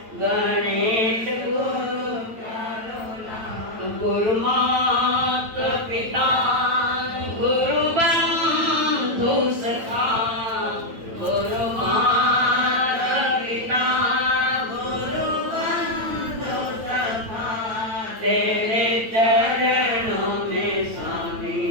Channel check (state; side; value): late; left; 8.9 ms